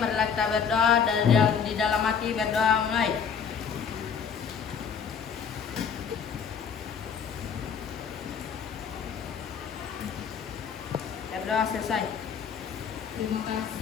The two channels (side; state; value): right; quieter; 6.8 dB